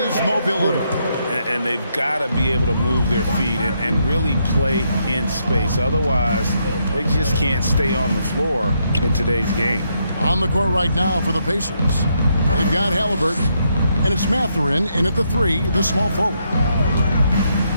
mobility. And they've got to be able to move their feet and really play in space. Otherwise, they just can't stay on the floor in today's game. On the court right now for the Pacers, they've got Halliburton, and it's Mathurin in at the 3, the small forward.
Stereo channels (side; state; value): both; inverted; correlation -0.77